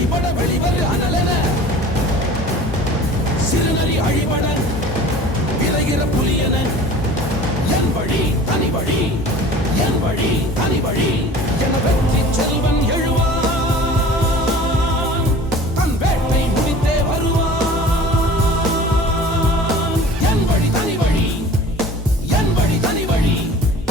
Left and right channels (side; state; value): both; normal; correlation 0.43